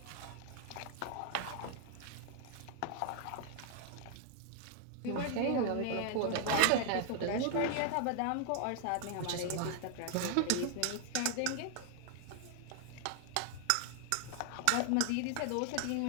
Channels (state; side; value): different; both; correlation 0.00